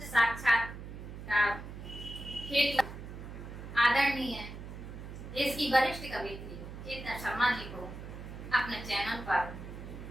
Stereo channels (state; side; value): noise; right; hum, 11 dB below the sound